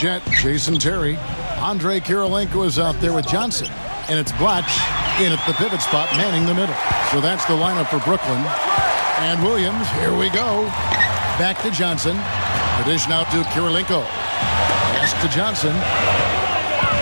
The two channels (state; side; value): inverted; both; correlation -1.00